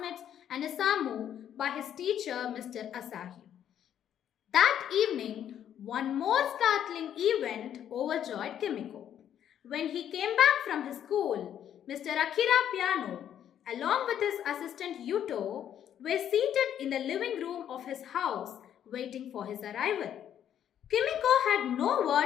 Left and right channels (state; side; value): quieter; right; 10.0 dB